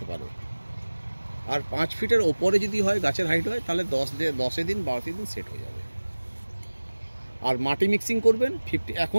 পারে। আর 5 ফিটের উপরে যদি হয় গাছের হাইট হয় তাহলে 10 দিন 12 দিন সেট হয়ে যাবে। আর মাটি মিক্সিং করবেন 50।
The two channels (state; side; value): inverted; both; correlation -1.00